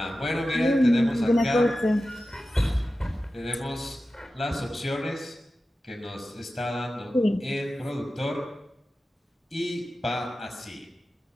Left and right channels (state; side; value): normal; both; correlation 0.94